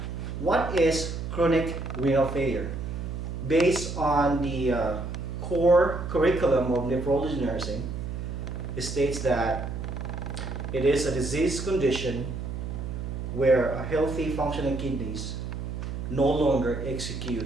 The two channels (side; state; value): right; noise; hum, 5 dB below the sound